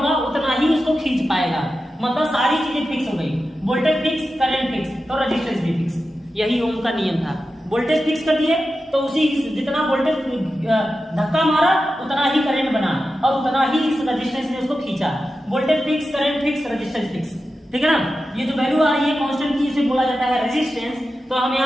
उतना ही उसको खींच पाएगा। मतलब सारी चीजें फिक्स हो गई, वोल्टेज फिक्स, करंट फिक्स, तो रेजिस्टेंस भी फिक्स। यही ओम का नियम था। वोल्टेज फिक्स कर दिए तो उसी जितना वोल्टेज धक्का मारा उतना ही करंट बना और उतना ही इस रेजिस्टेंस ने उसको खींचा। Voltage fix, current fix, resistance fix. ठीक है ना। ये जो वैल्यू आ रही है कांस्टेंट की, इसे बोला जाता है रेजिस्टेंस। तो हम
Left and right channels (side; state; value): both; normal; correlation 0.92